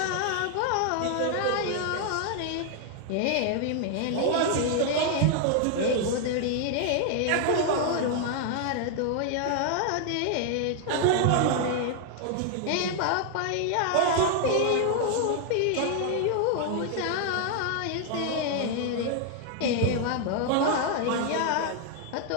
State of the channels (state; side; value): different; both; correlation 0.00